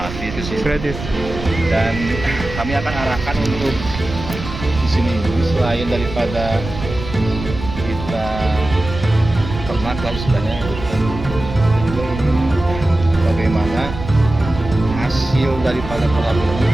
di sini. Gratis. Dan kami akan arahkan untuk di sini selain daripada kita ternak lah istilahnya, kita juga ingin bagaimana hasil daripada kolam ini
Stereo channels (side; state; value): right; noise; rumble, 9 dB below the sound